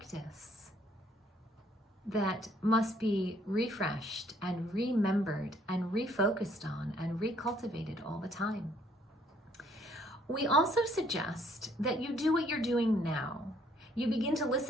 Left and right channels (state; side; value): normal; both; correlation 0.64